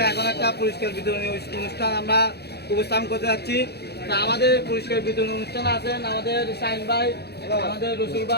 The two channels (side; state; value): right; late; 0.48 ms